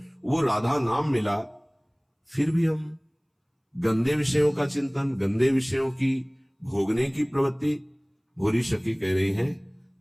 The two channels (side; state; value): both; identical; correlation 1.00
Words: वो राधा नाम मिला। फिर भी हम गंदे विषयों का चिंतन, गंदे विषयों की भोगने की प्रवृत्ति। भोरी सखी कह रही है,